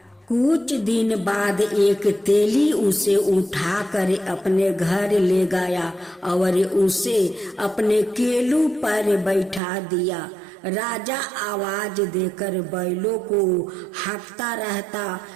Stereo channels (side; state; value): left; drops out; at 9.6 s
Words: कुछ दिन बाद एक तेली उसे उठाकर अपने घर ले गया और उसे अपने केलू पर बैठा दिया। राजा आवाज देकर बैलों को हाँकता रहता।